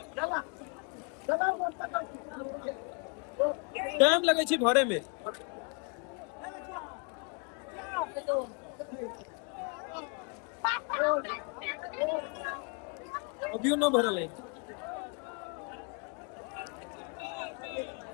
टाइम लगे छी भरे में। अभियो न भरल है।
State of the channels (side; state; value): right; quieter; 35.4 dB